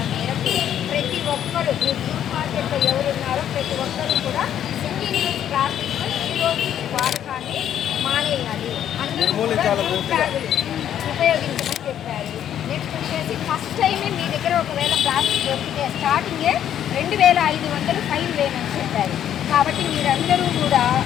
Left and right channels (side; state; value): right; quieter; 10.2 dB